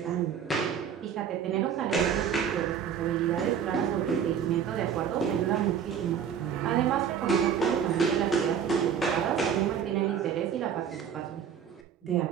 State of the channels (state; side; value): quieter; left; 8.0 dB